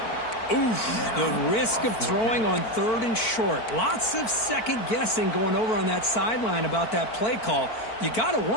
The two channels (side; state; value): right; late; 4.5 ms